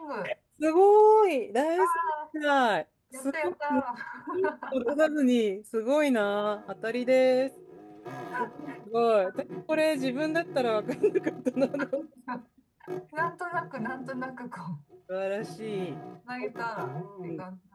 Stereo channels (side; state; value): both; identical; correlation 1.00